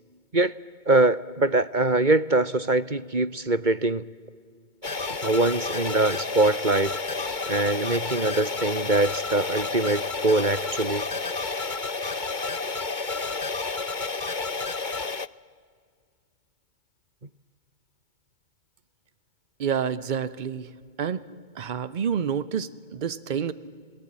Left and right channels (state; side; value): late; left; 2.2 ms